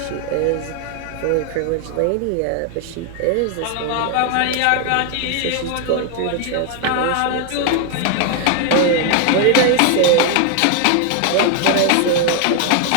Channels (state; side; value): different; both; correlation 0.00